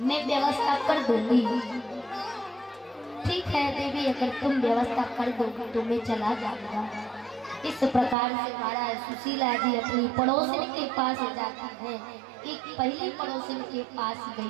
मैं व्यवस्था कर दूंगी। ठीक है देवी, अगर तुम व्यवस्था कर दोगी तो मैं चला जाऊंगा। इस प्रकार से महाराज सुशीला जी अपनी पड़ोसिन के पास जाती हैं। एक पहली पड़ोसिन के पास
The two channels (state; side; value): drops out; left; at 8.2 s